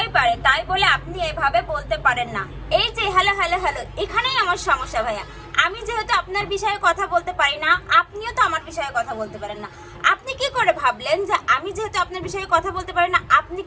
পারে, তাই বলে আপনি এভাবে বলতে পারেন না। এই যে হ্যালো হ্যালো হ্যালো, এখানেই আমার সমস্যা ভাইয়া। আমি যেহেতু আপনার বিষয়ে কথা বলতে পারি না, আপনিও তো আমার বিষয়ে কথা বলতে পারেন না। আপনি কি করে ভাবলেন যে আমি যেহেতু আপনার বিষয়ে কথা বলতে পারি না, আপনি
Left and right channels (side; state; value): both; identical; correlation 1.00